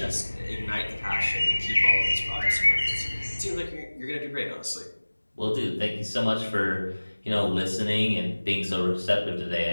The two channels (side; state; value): both; inverted; correlation -1.00